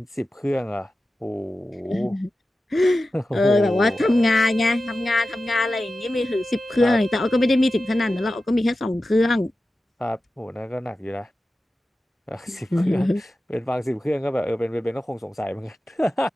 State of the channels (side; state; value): both; normal; correlation 0.94